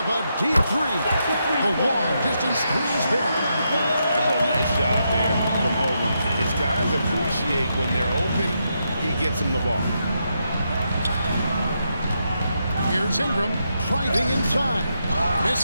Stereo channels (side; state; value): both; inverted; correlation -0.82